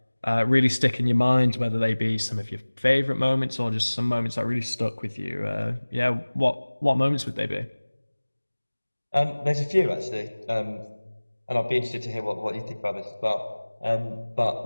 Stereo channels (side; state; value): both; inverted; correlation -1.00